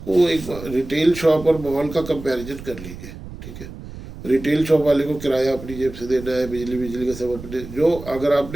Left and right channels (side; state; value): right; noise; rumble, 13 dB below the sound